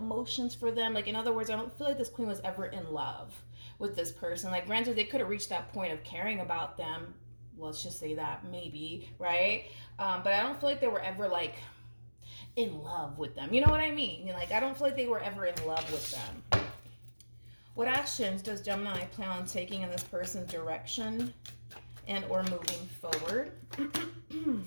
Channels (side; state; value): both; inverted; correlation -1.00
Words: for them. Like, in other words, I don't feel like this queen was ever in love with this person. Like, granted, they could have reached that point of caring about them, let's just say that, maybe, right? But I don't feel like they were ever like in love with them. You know what I mean? Like, I don't feel like they were ever in love with them. What actions does Gemini plan on taking in this person's direction and or moving forward?